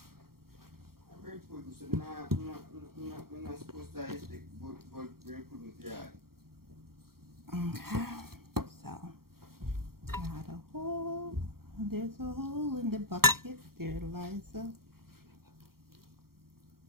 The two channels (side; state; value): left; late; 0.94 ms